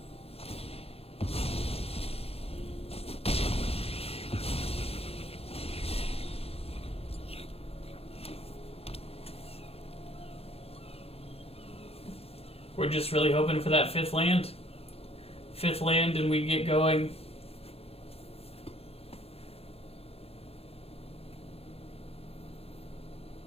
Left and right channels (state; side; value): late; right; 0.29 ms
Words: We're just really hoping for that 5th land. 5th land and we get going.